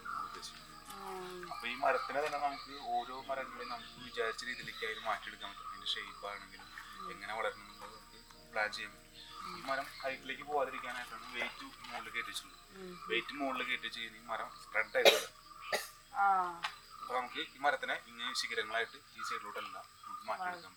നമ്മൾ ഉദ്ദേശിക്കുന്നത്. അപ്പോൾ ഈ മരത്തിനെ തന്നെ നമുക്ക് ഓരോ മരങ്ങളെയും നമുക്ക് വിചാരിച്ച രീതിയിലേക്ക് അതിന് മാറ്റിയെടുക്കാൻ പറ്റും. അതിൻ്റെ ഷേപ്പ് ആണെങ്കിലും എങ്ങനെ വളരണം എന്നുള്ളത് നമുക്ക് പ്ലാൻ ചെയ്യാൻ പറ്റും. ഈ മരം ഹൈറ്റിലേക്ക് പോകാതിരിക്കാനായിട്ടാണ് വെയിറ്റ് മുകളിൽ കയറ്റിച്ചുള്ളത്. വെയിറ്റ് മുകളിൽ കയറ്റി ചെയ്യുന്ന ഈ മരം സ്പ്രെഡ് ആയിട്ട് വരും. അപ്പോൾ നമുക്ക് ഈ മരത്തിനെ ഇങ്ങനെ ശിഖരങ്ങളായിട്ട് ഈ സൈഡിലോട്ടെല്ലാം നമുക്ക് മാറ്റിയെടുക്കാൻ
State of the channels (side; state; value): both; identical; correlation 1.00